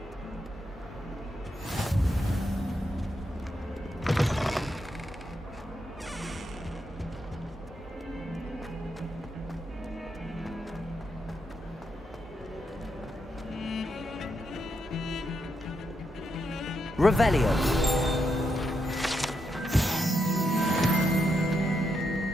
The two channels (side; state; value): both; normal; correlation 0.82